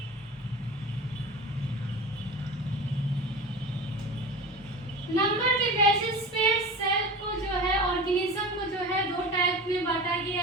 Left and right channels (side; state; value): both; normal; correlation 0.32